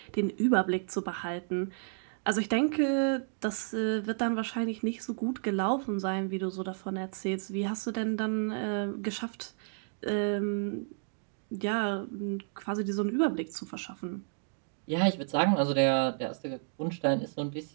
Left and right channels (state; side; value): silent; left; digital silence